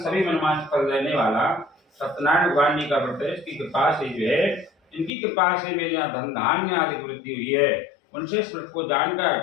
सभी मनमांस फल देने वाला सत्यनारायण भगवान जी का व्रत है। इसकी कृपा से जो है, इनकी कृपा से मेरे यहाँ धन धान्य आदि वृद्धि हुई है। उनसे इस व्रत को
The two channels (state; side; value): drops out; right; at 5.1 s